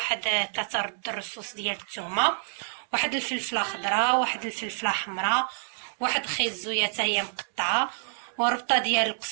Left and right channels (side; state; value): left; silent; digital silence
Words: 3 رد الرصوص ديال الثومه، واحد الفلفله خضراء، واحد الفلفله حمراء، واحد خيط زويه حتى هي مقطعه، وربطه ديال